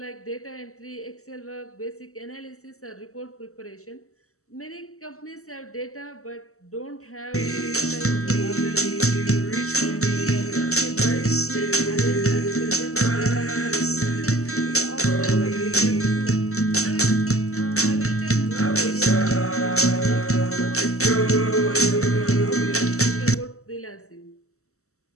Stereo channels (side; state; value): right; late; 0.64 ms